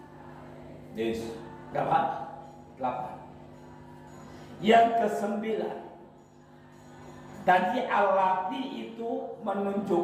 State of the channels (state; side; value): identical; both; correlation 1.00